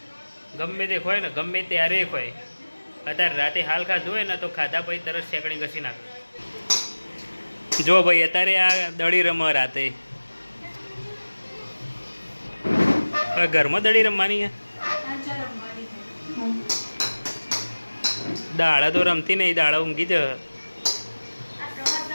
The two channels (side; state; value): both; inverted; correlation -1.00